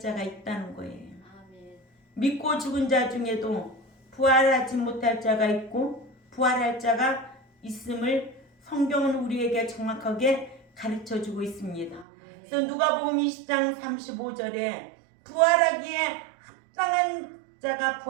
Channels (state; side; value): drops out; left; at 12.1 s